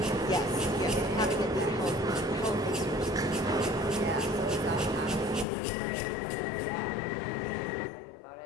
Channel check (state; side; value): drops out; right; at 5.5 s